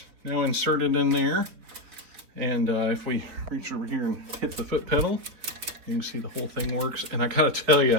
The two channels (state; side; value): late; left; 4.2 ms